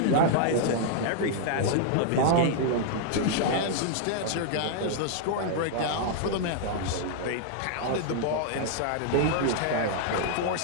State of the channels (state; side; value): different; both; correlation -0.01